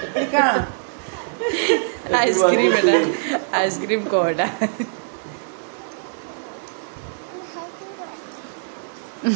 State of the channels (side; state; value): left; silent; digital silence